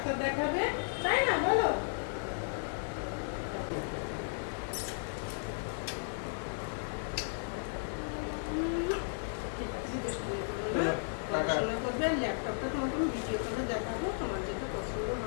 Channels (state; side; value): silent; right; digital silence